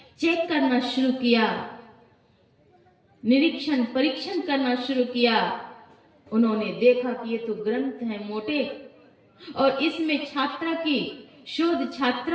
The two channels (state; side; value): identical; both; correlation 1.00